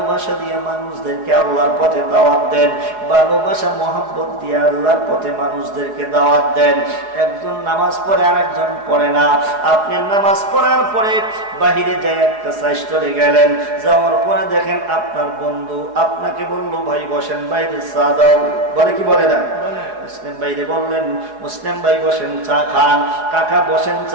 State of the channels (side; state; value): left; late; 4.8 ms